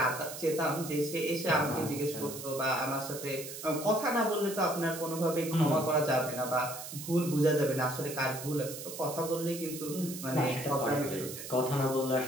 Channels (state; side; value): noise; right; hiss, 10 dB below the sound